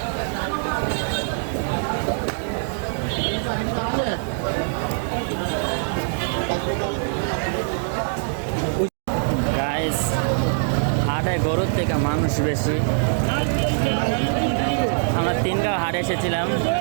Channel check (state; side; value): silent; left; digital silence